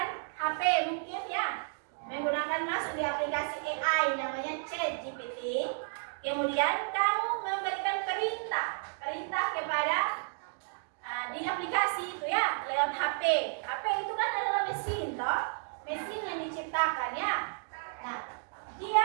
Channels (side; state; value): left; silent; digital silence